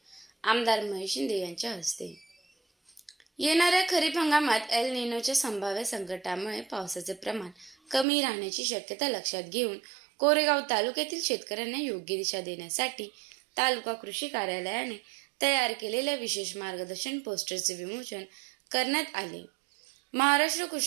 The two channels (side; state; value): left; drops out; at 8.1 s